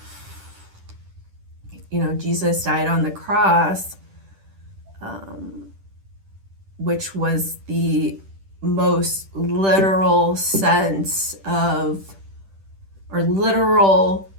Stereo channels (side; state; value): left; late; 10 ms